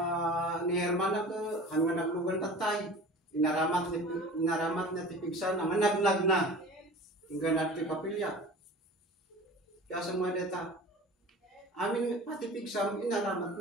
ni hermana ke hanggang naglugan tatay. Inaramat na ti pigsa na naglag na. Hingga nati kapilya. Kaya sa mga data, amin pati pigsam, inaramat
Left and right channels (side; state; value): both; normal; correlation 0.39